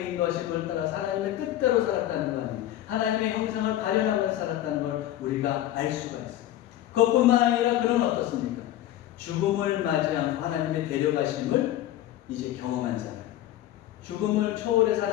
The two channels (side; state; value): right; quieter; 13.3 dB